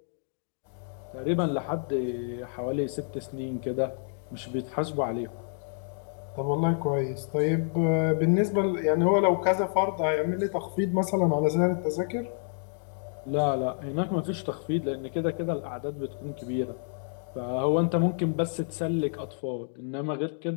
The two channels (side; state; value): right; silent; digital silence